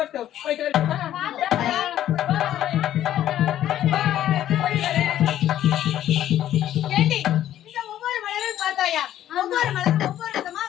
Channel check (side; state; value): right; quieter; 12.1 dB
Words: போயிட்டு வரட்டுமா? ஏண்டி இந்த ஒவ்வொரு மலரும் பார்த்தாயா? ஒவ்வொரு மலரும் ஒவ்வொரு விதமா